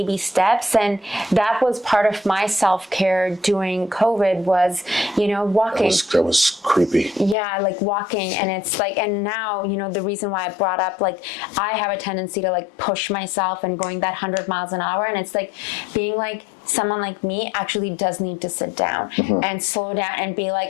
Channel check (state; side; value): drops out; right; at 7.4 s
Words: steps. And that was part of my self-care during COVID was, walking. That was creepy. Yeah, like walking. And it's like, and now, the reason why I brought up, like, I have a tendency to like push myself and going that 100 miles an hour, and it's like being like someone like me actually does need to sit down and slow down and be